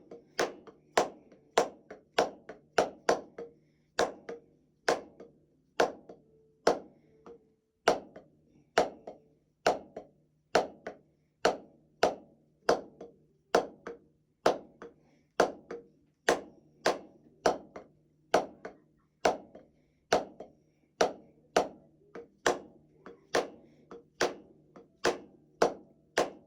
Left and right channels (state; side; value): identical; both; correlation 1.00